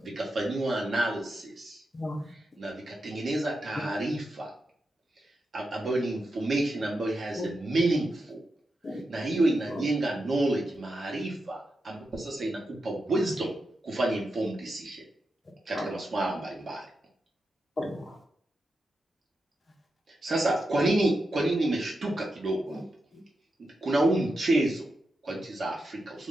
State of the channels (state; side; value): normal; both; correlation 0.88